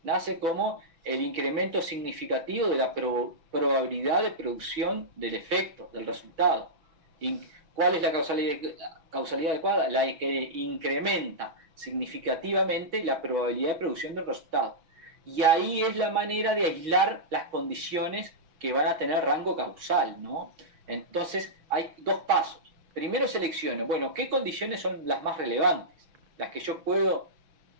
Nace como el incremento significativo de la probabilidad de producción del efecto, del resultado. ¿Cuál es la causalidad adecuada? La que incrementa significativamente la probabilidad de producción del resultado. Y ahí es la manera de aislar las condiciones que van a tener rango causal, ¿no? Entonces hay dos pasos. Primero selecciono, bueno, ¿qué condiciones son las más relevantes? Las que yo puedo,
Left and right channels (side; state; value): left; late; 6.0 ms